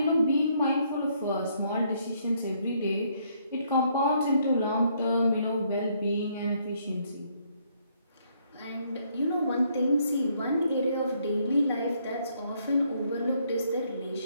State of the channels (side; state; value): both; inverted; correlation -0.70